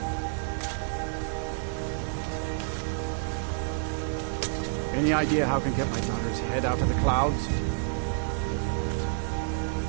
Any idea how I can get my daughter's head out of the clouds?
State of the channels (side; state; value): left; silent; digital silence